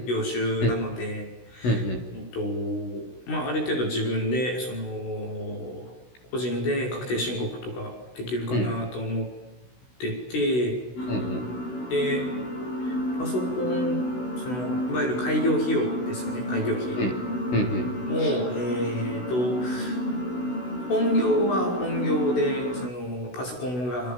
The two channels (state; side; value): late; right; 16 ms